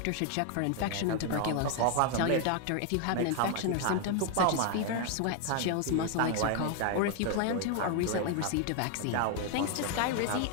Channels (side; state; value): both; different; correlation 0.01